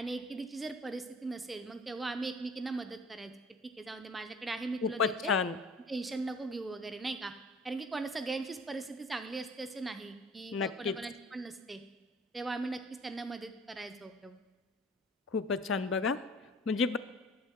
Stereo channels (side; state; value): both; normal; correlation 0.48